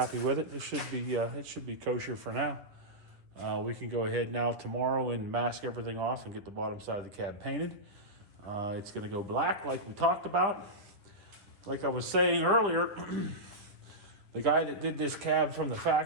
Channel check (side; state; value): left; late; 9.9 ms